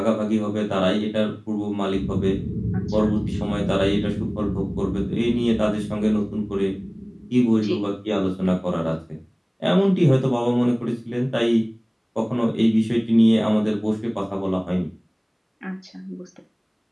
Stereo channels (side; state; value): both; identical; correlation 1.00